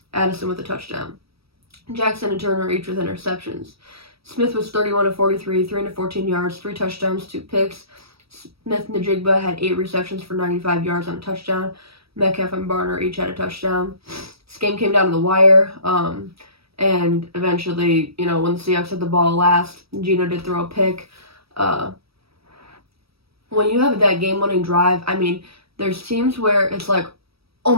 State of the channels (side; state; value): left; late; 0.76 ms